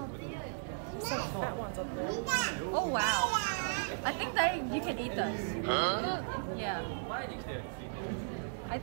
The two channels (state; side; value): silent; left; digital silence